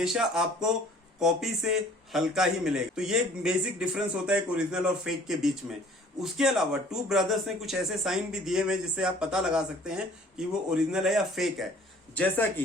आपको कॉपी से हल्का ही मिलेगा। तो ये एक बेसिक डिफरेंस होता है ओरिजिनल और फेक के बीच में। उसके अलावा टू ब्रदर्स ने कुछ ऐसे साइन भी दिए हुए जिससे आप पता लगा सकते हैं कि वो ओरिजिनल है या फेक है। जैसा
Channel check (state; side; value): normal; both; correlation 0.53